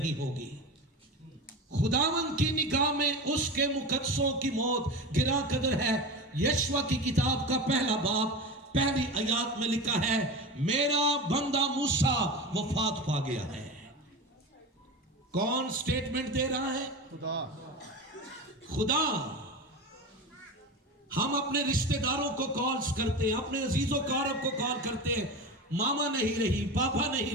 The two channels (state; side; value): normal; both; correlation 0.26